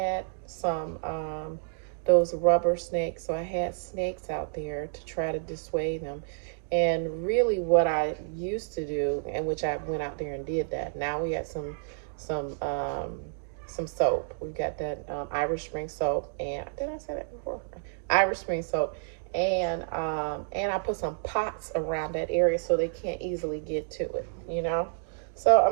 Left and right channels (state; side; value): silent; left; digital silence